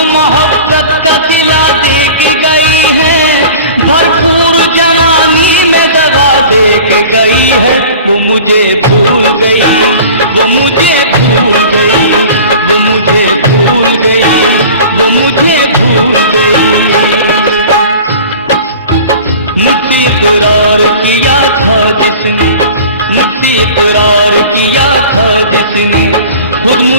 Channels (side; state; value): both; inverted; correlation -0.41